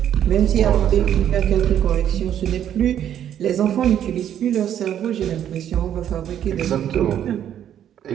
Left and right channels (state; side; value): quieter; left; 10.2 dB